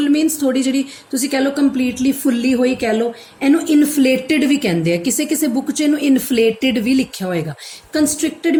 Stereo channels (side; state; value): both; identical; correlation 1.00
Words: means ਥੋੜੀ ਜਿਹੜੀ ਤੁਸੀਂ ਕਹਿ ਲਓ ਕੰਪਲੀਟਲੀ ਫੁੱਲੀ ਹੋਈ ਕਹਿ ਲਓ, ਇਹਨੂੰ ਇਨਫਲੇਟਡ ਵੀ ਕਹਿੰਦੇ ਆ। ਕਿਸੇ ਬੁੱਕ 'ਚ ਇਹਨੂੰ ਇਨਫਲੇਟਡ ਵੀ ਲਿਖਿਆ ਹੋਏਗਾ। ਕੰਸਟ੍ਰਿਕਟਡ